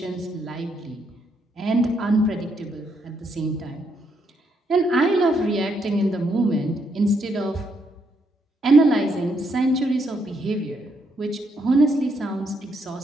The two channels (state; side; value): normal; both; correlation 0.76